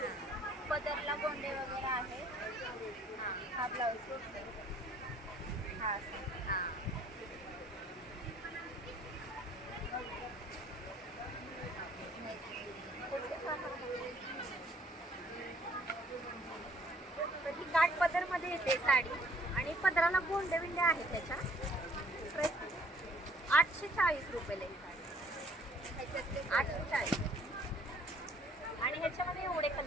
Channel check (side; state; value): both; normal; correlation 0.60